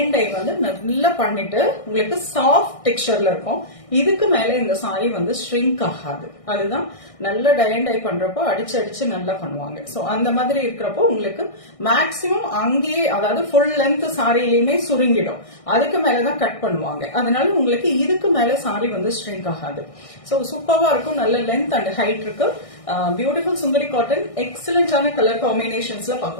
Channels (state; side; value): late; right; 1.6 ms